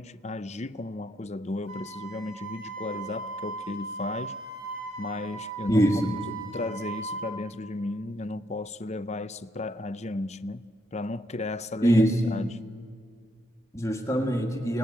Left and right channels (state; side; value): normal; both; correlation 0.74